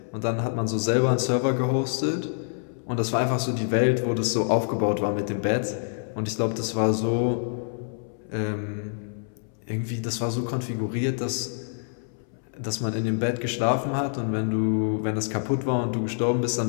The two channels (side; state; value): right; silent; 61 dB below the other